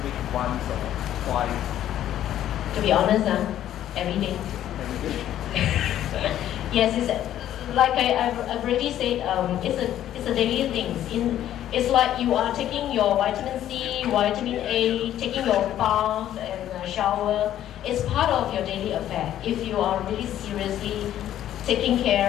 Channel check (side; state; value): right; quieter; 11.8 dB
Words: week, once or twice? To be honest, every day. Every day? Yes, it's like I've already said. It's a daily thing. It's like you are taking your vitamin C, vitamin A, taking your bath and shower. It's part of your daily affair. If you are really seriously taking